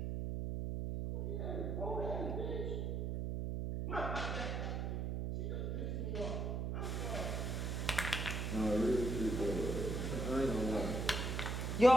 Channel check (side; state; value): right; noise; hum, 1 dB below the sound